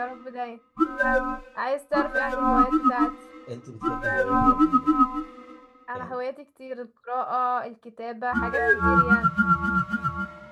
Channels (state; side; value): identical; both; correlation 1.00